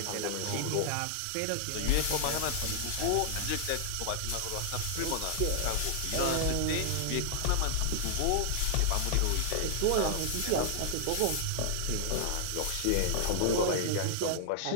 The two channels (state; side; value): different; both; correlation 0.00